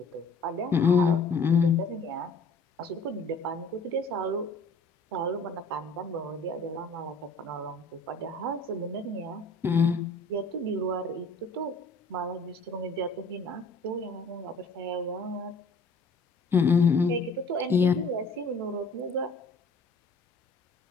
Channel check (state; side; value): quieter; right; 3.2 dB